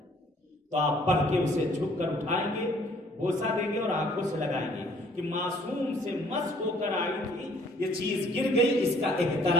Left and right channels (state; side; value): normal; both; correlation 0.60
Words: تو آپ پڑھ کے اسے جھک کر اٹھائیں گے، بوسہ دیں گے اور آنکھوں سے لگائیں گے کہ معصوم سے مس ہو کر آئی تھی، یہ چیز گر گئی، اس کا